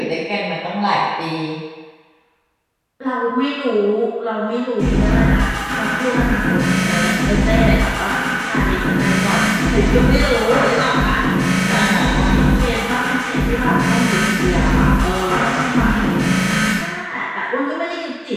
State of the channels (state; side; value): identical; both; correlation 1.00